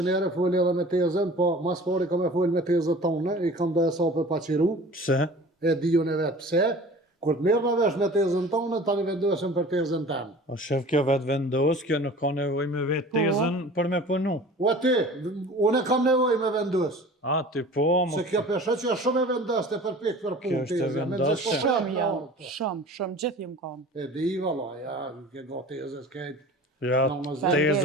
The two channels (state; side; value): normal; both; correlation 0.42